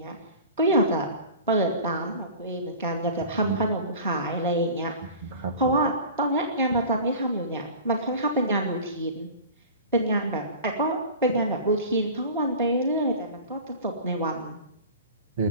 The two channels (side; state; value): both; inverted; correlation -0.38